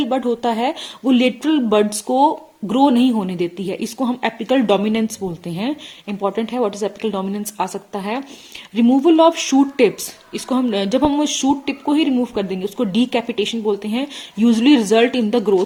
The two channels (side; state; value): both; identical; correlation 1.00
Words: बड होता है वो लेटरल बड्स को ग्रो नहीं होने देती है, इसको हम एपिकल डोमिनेंस बोलते हैं। इंपॉर्टेंट है, व्हाट इज एपिकल डोमिनेंस आ सकता है। रिमूवल ऑफ शूट टिप्स, इसको हम जब हम शूट टिप को ही रिमूव कर देंगे उसको डीकैपिटेशन बोलते हैं, usually result in the